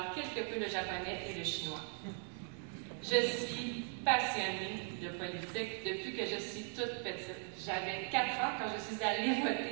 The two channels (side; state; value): left; silent; 52 dB below the other